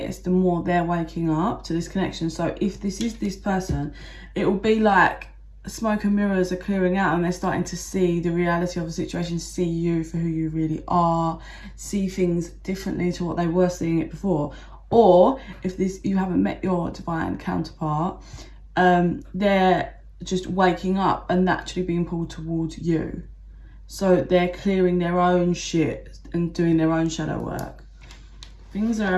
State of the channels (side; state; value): both; identical; correlation 1.00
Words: the more they're waking up to this connection. So if this is this person, it will be like smoke and mirrors are clearing out, and they're starting to see the reality of the situation, see you for who you really are, see things differently to what they were seeing it before. Or if you haven't met your divine counterpart, they're just waking up and naturally being pulled towards you. So they're clearing their own shit and doing their own shadow work. Things are